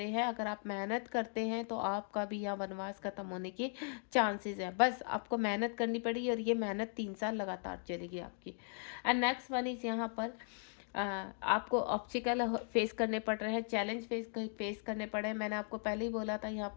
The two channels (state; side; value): silent; right; 53 dB below the other